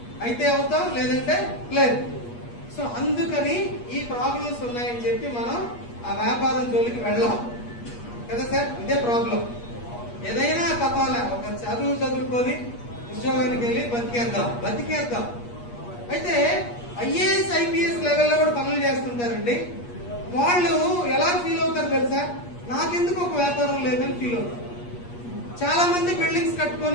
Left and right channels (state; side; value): late; right; 8.4 ms